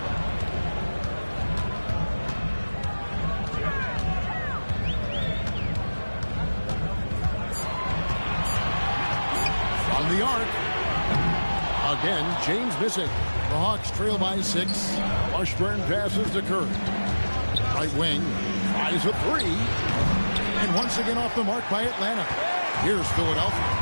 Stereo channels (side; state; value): both; inverted; correlation -1.00